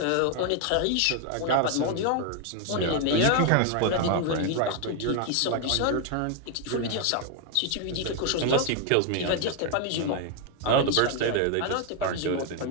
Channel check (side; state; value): both; different; correlation 0.00